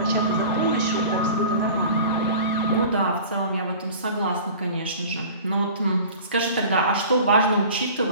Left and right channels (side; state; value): both; inverted; correlation -0.41